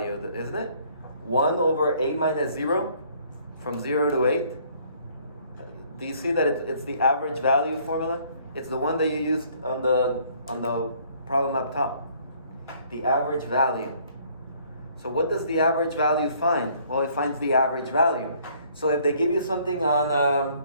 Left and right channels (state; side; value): inverted; both; correlation -0.61